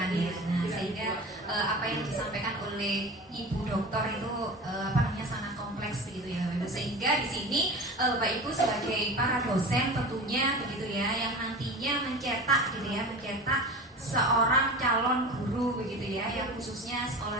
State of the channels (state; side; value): normal; both; correlation 0.33